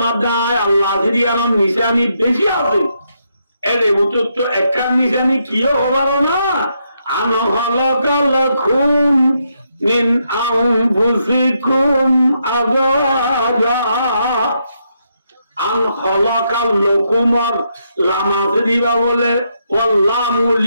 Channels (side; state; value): both; inverted; correlation -0.79